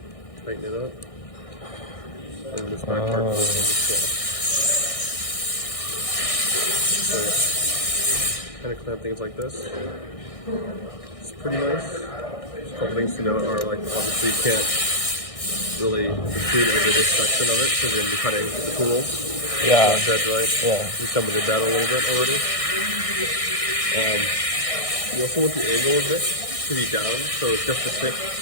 Tighten it up. And this back part goes on the slot. So yeah. Kind of clamp things like this. It's pretty nice. Just a couple things to note are like obviously you can't really protrude over this section of it because you're going to be cutting the tool. Yeah. Dead right. Yeah. You come with it down a little bit already. You also want the angle of this to be down, so it's just the tip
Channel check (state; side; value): late; right; 1.6 ms